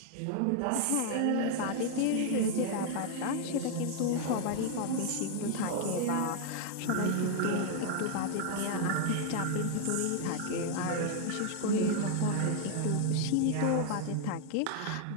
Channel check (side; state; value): both; different; correlation 0.00